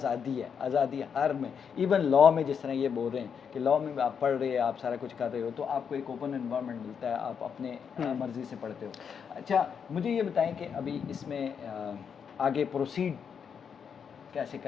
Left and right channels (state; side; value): quieter; right; 7.0 dB